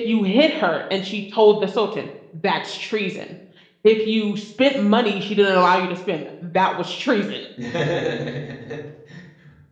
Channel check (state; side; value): identical; both; correlation 1.00